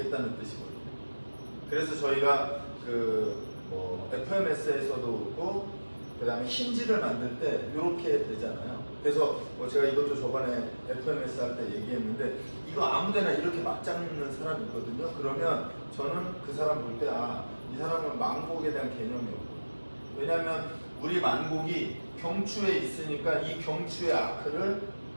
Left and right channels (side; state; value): both; inverted; correlation -1.00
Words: 뜻이거든요. 그래서 저희가 FMS에서도 그렇고 그 다음에 힌지를 만들 때 이렇게 되잖아요. 그래서 제가 이것도 저번에 FMS 할 때 얘기했는데 이거 아무데나 이렇게 막 잡는 사람이 있거든요. 그러면 저는 그 사람 볼 때 이 사람은 만곡에 대한 개념이 없고, 왜냐하면 우리 만곡이 경추에 있으니까 이 경추의 아크를